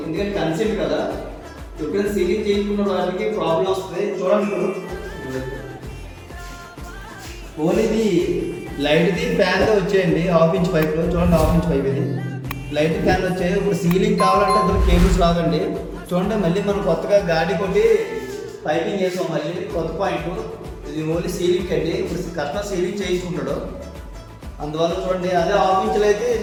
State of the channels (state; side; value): identical; both; correlation 1.00